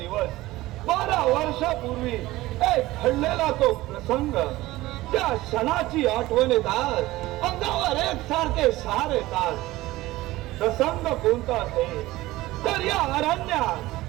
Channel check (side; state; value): left; quieter; 17.9 dB